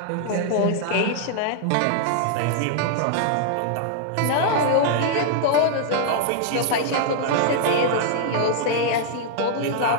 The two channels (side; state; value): both; different; correlation -0.01